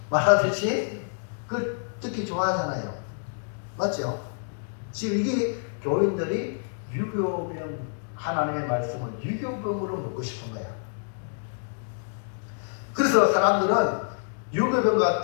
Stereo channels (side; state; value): right; silent; digital silence